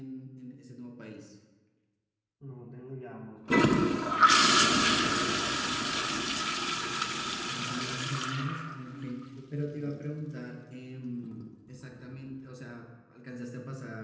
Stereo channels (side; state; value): both; identical; correlation 1.00